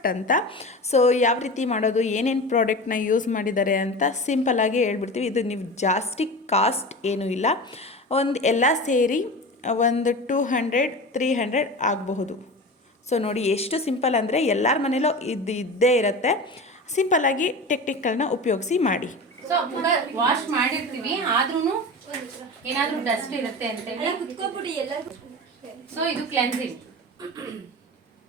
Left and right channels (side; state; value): both; normal; correlation 0.30